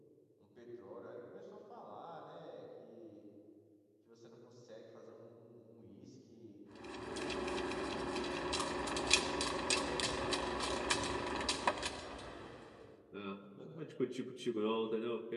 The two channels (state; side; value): identical; both; correlation 1.00